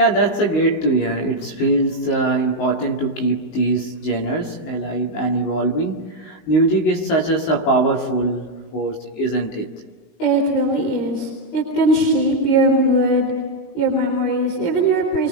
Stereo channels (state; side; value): late; right; 19 ms